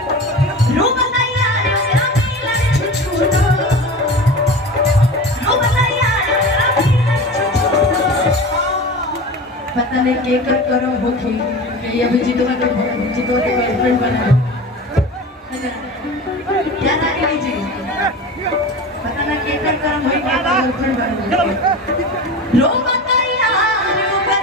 रो बताइया रे मेरा मिलन छुछुना, रो बताइया रे मेरा मिलन छुछुना। पता नहीं के कर करो होखी कि अभी जीतवा के गर्लफ्रेंड बना क्या ना लीजिए, पता ना के कर करम होई के गर्लफ्रेंड बना रो बताइया रे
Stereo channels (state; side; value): normal; both; correlation 0.32